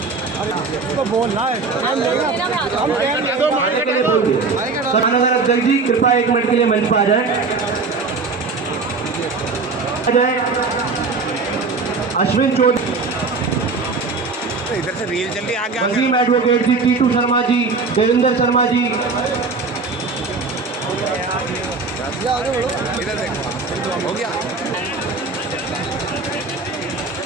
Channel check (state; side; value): quieter; left; 4.0 dB